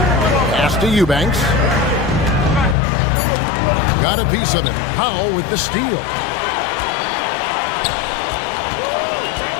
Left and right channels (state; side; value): drops out; right; at 2.8 s